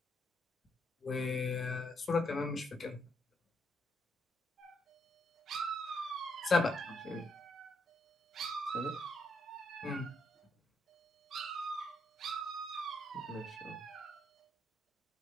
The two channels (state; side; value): normal; both; correlation 0.76